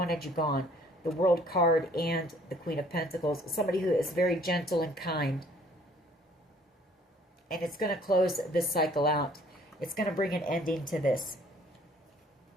you gone. The World card and the Queen of Pentacles. Somebody who is very gentle and kind. And it's going to close this cycle out. It's going to bring an ending to this.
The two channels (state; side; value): normal; both; correlation 0.58